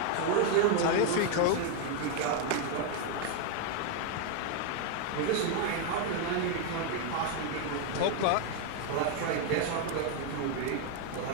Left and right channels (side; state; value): both; different; correlation 0.01